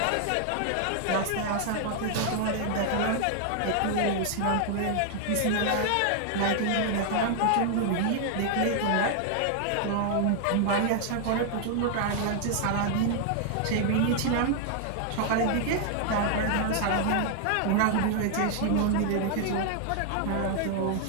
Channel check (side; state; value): both; different; correlation 0.00